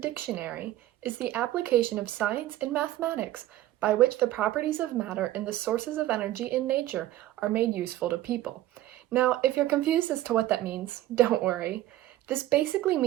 is the application of science and mathematics by which the properties of matter and the sources of energy in nature are made useful to people. Now, if you're confused as to what that means, don't worry. This basically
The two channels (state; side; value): quieter; left; 14.7 dB